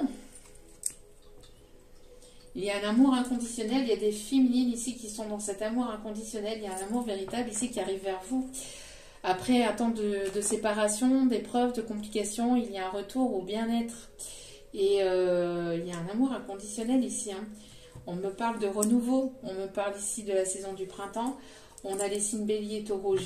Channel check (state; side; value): identical; both; correlation 1.00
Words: Il y a un amour inconditionnel. Il y a des féminines ici qui sont dans cet amour inconditionnel. Il y a un amour véritable ici qui arrive vers vous. Après un temps de séparation, d'épreuves, de complications, il y a un retour au bien-être. Et il y a un amour inconditionnel ici. Hein. On me parle de renouveau. On me parle ici de la saison du printemps. On a les signes bélier, taureau,